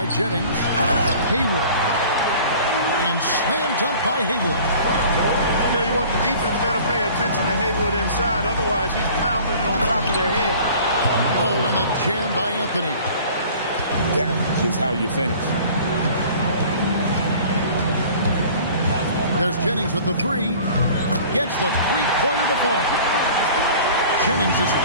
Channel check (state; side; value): inverted; both; correlation -0.46